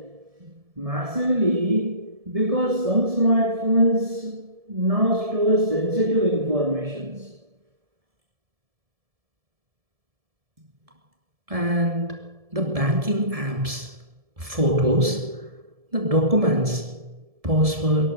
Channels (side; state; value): left; late; 1.7 ms